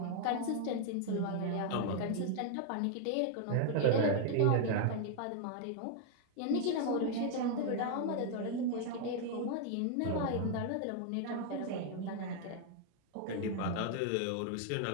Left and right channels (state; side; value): different; both; correlation 0.00